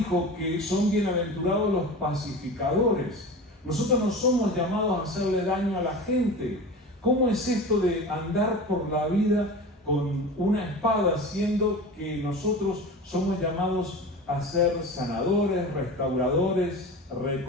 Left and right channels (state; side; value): normal; both; correlation 0.32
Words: que son bienaventurados los pacificadores. Nosotros no somos llamados a hacerle daño a la gente. ¿Cómo es esto de andar por la vida con una espada, siendo que nosotros somos llamados a ser sanadores, restauradores,